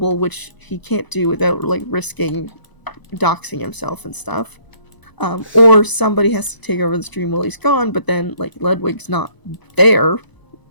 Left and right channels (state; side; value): late; right; 1.0 ms